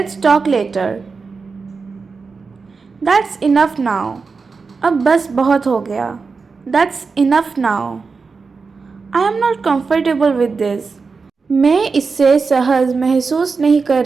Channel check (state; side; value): quieter; left; 4.7 dB